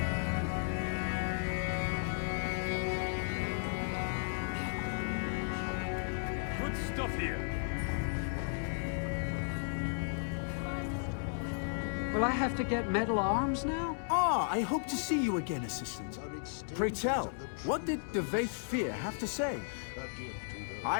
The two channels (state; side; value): silent; right; digital silence